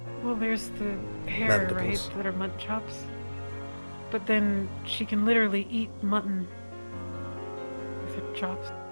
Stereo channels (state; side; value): inverted; both; correlation -1.00